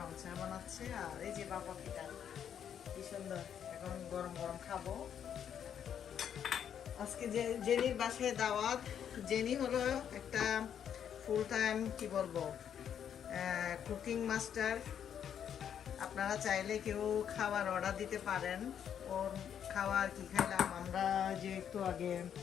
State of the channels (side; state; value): right; quieter; 8.8 dB